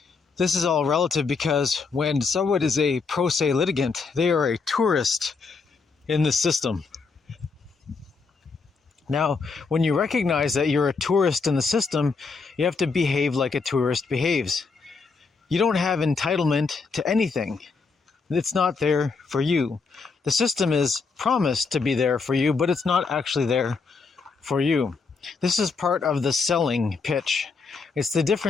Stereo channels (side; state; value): right; quieter; 4.7 dB